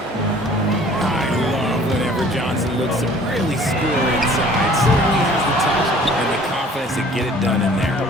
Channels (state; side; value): normal; both; correlation 0.52